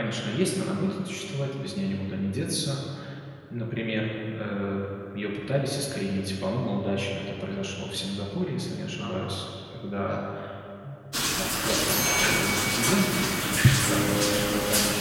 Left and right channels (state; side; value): identical; both; correlation 1.00